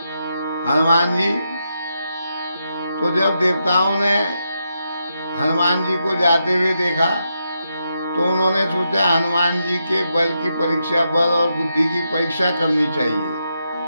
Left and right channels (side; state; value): both; inverted; correlation -0.84